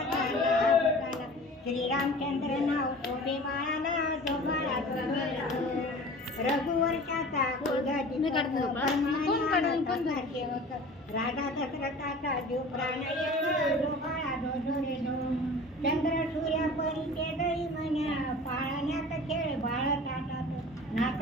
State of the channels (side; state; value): both; normal; correlation 0.41